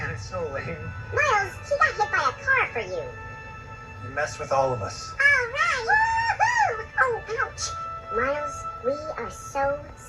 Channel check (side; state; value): both; identical; correlation 1.00